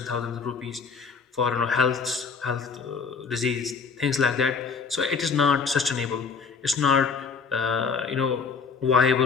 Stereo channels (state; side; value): quieter; right; 5.4 dB